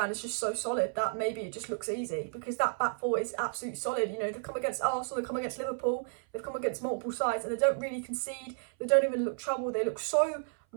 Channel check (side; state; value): left; silent; 56 dB below the other